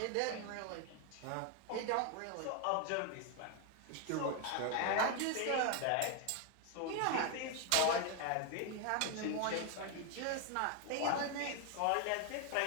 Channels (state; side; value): different; both; correlation 0.01